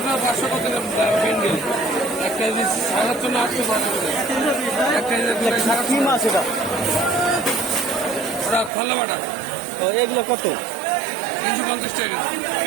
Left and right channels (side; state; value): left; drops out; at 8.7 s